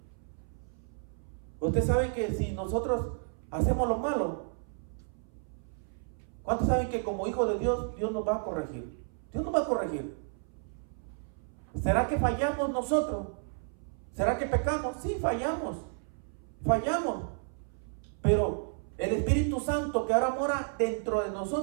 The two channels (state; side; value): silent; left; 56 dB below the other